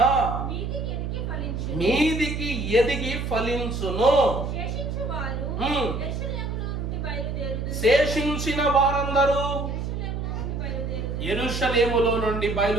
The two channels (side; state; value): right; noise; hum, 3 dB below the sound